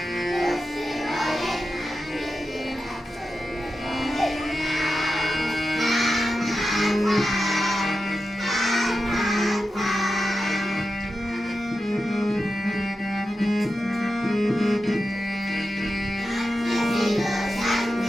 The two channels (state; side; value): normal; both; correlation 0.90